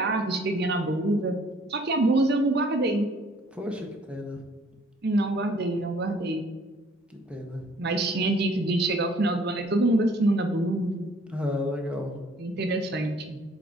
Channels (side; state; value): both; normal; correlation 0.58